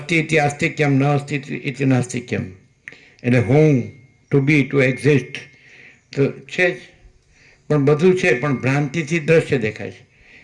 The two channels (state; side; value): identical; both; correlation 1.00